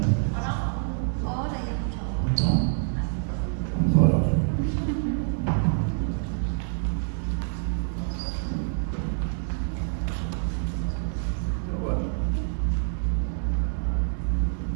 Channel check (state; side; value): silent; left; digital silence